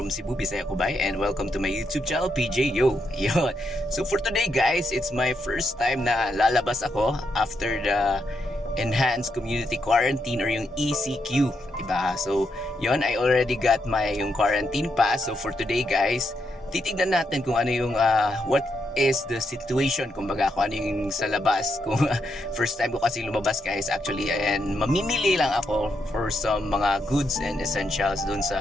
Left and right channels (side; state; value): both; normal; correlation 0.81